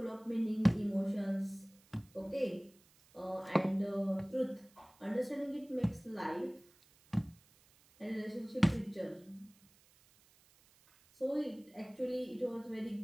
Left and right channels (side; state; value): right; noise; hiss, 29 dB below the sound